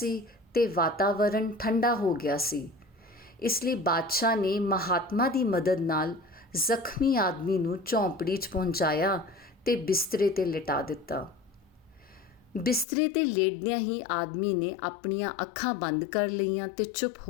ਤੇ ਵਾਤਾਵਰਣ ਠੰਡਾ ਹੋ ਗਿਆ ਸੀ। ਇਸ ਲਈ ਬਾਦਸ਼ਾਹ ਨੇ ਮਹਾਤਮਾ ਦੀ ਮਦਦ ਨਾਲ ਜ਼ਖਮੀ ਆਦਮੀ ਨੂੰ ਝੌਂਪੜੀ 'ਚ ਪਹੁੰਚਾਇਆ ਤੇ ਬਿਸਤਰੇ 'ਤੇ ਲਿਟਾ ਦਿੱਤਾ। ਬਿਸਤਰੇ 'ਤੇ ਲੇਟਦਿਆਂ ਹੀ ਆਦਮੀ ਨੇ ਆਪਣੀਆਂ ਅੱਖਾਂ ਬੰਦ ਕਰ ਲਈਆਂ ਤੇ ਚੁੱਪ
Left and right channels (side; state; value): right; drops out; at 12.9 s